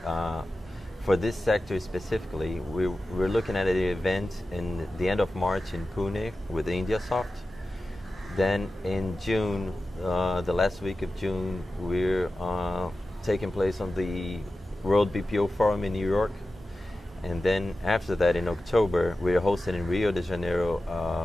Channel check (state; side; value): normal; both; correlation 0.94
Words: for this sector specifically, we're looking at an event in the end of March in Pune with IndiaSoft. Then in June, the last week of June, we're taking place on the World BPO Forum in New York. And then after that, in October, we're hosting in Rio de Janeiro